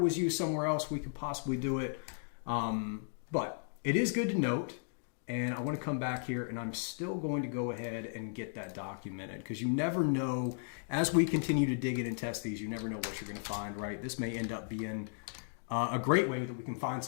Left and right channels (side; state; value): right; silent; digital silence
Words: used somewhere else, we could possibly do it. But it is good to note And I want to come back here, and I'm still going to go ahead and get that documented, because you never know, as we continue to dig in and test these, you never know what you're going to find, right? This may end up being a great way that we can find